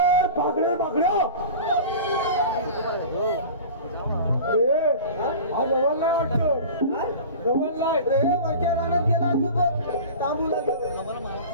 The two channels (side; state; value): both; inverted; correlation -0.36